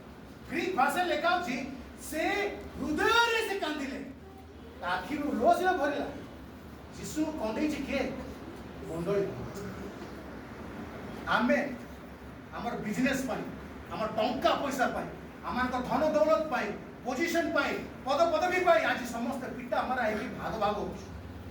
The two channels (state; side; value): identical; both; correlation 1.00